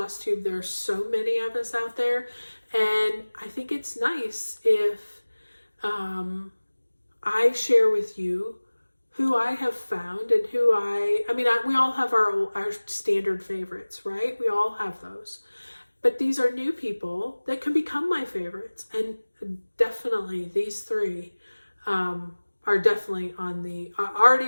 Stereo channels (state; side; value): inverted; both; correlation -1.00